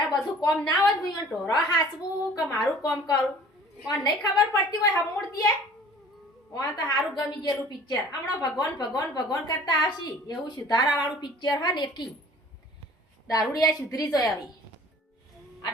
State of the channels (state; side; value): normal; both; correlation 0.49